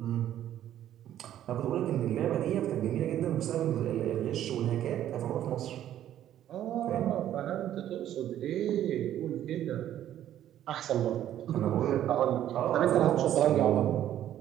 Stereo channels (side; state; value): left; quieter; 11.7 dB